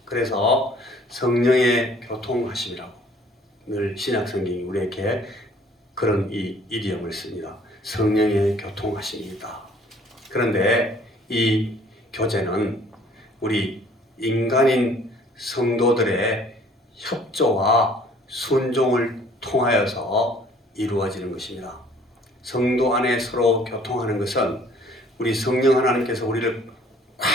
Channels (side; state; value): both; normal; correlation 0.56